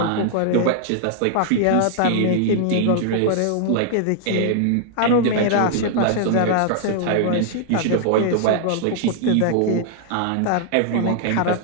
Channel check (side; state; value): both; different; correlation -0.01